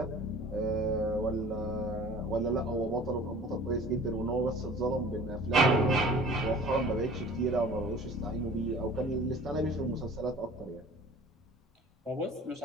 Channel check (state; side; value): normal; both; correlation 0.45